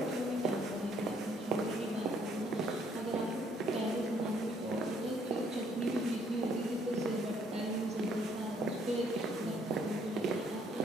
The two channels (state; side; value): normal; both; correlation 0.66